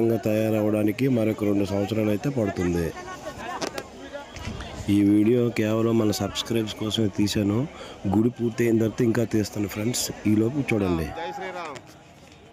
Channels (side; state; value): both; identical; correlation 1.00